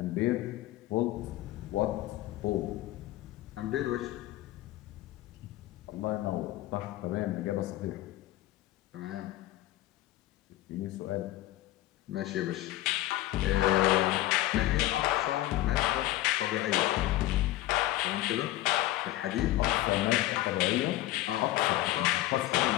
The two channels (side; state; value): right; quieter; 15.8 dB